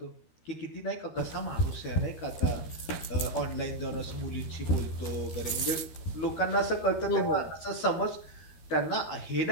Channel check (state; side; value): late; right; 13 ms